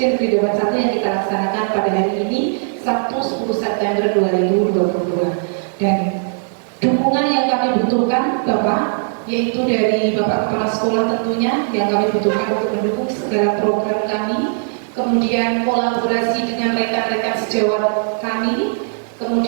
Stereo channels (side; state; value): left; silent; digital silence